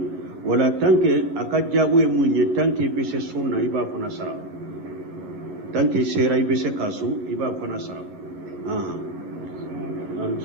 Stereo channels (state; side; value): late; left; 11 ms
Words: wala tanke aka jabu e munye tanke be se sunna iba fana sara tanke sera ibe se kasu iba fana sara